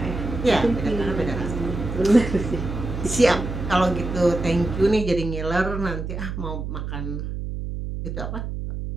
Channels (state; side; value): noise; right; hum, 5 dB below the sound